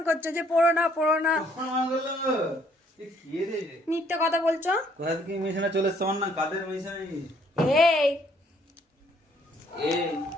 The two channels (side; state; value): both; normal; correlation 0.65